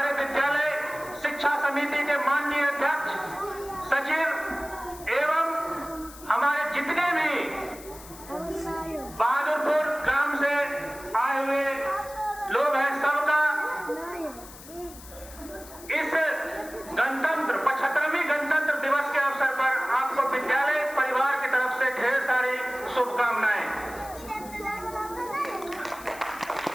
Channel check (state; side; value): noise; left; hiss, 17 dB below the sound